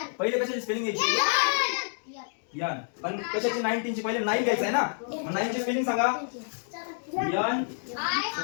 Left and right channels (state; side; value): silent; right; digital silence